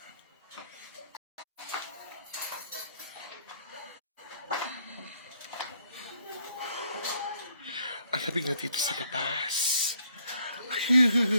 Ang labig na dito sa labas.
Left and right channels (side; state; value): both; inverted; correlation -0.68